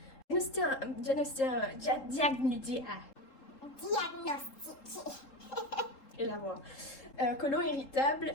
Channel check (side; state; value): right; late; 3.7 ms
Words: Diagnostic. Et la voix. Côlon irritable,